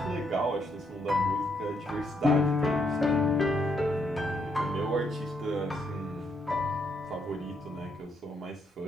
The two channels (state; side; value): normal; both; correlation 0.75